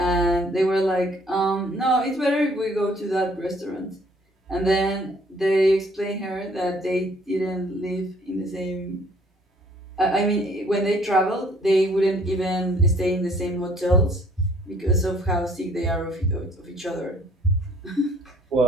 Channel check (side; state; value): both; normal; correlation 0.60